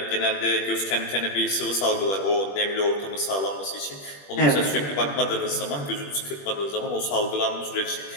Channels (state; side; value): late; right; 21 ms